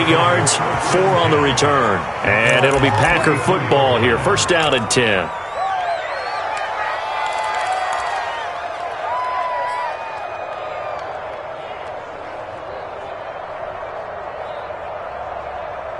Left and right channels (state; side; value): identical; both; correlation 1.00